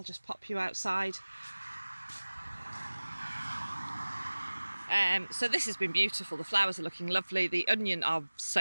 just pop you outside. So this has been beautiful. The flowers are looking lovely. The onion are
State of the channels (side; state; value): both; inverted; correlation -1.00